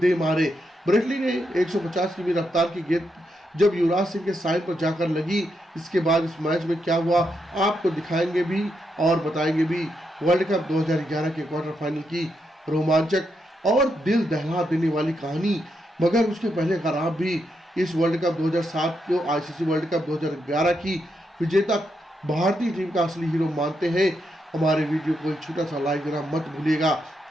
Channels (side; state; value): both; normal; correlation 0.82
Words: मारे। ब्रेटली ने 150 की रफ्तार की गेंद जब युवराज सिंह के साइन पर जाकर लगी, इसके बाद इस मैच में क्या हुआ आपको दिखाएंगे भी और बताएंगे भी। वर्ल्ड कप 2011 के क्वार्टर फाइनल की रोमांचक और दिल दहला देने वाली कहानी, मगर उसके पहले अगर आप भी इस वर्ल्ड कप 2007 को आईसीसी वर्ल्ड कप 2011 की विजेता भारतीय टीम का असली हीरो मानते हैं, हमारे वीडियो को एक छोटा सा लाइक देना मत भूलिएगा